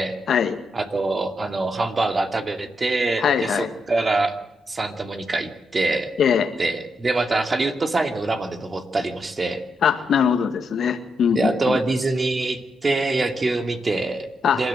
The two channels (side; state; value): both; normal; correlation 0.82